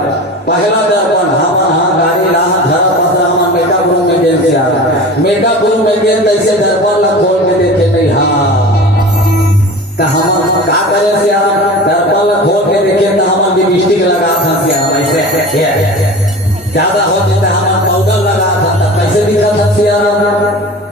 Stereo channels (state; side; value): normal; both; correlation 0.35